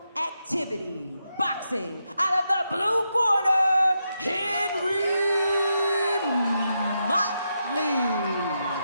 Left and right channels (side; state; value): both; inverted; correlation -0.84